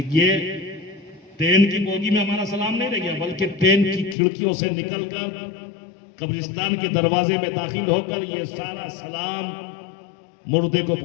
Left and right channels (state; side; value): drops out; right; at 4.2 s